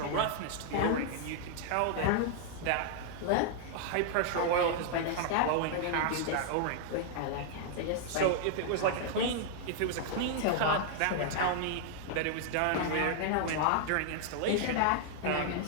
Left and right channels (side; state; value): both; different; correlation -0.01